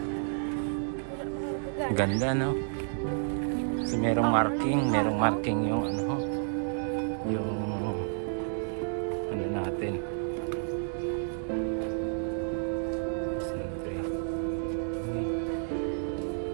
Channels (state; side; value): silent; left; digital silence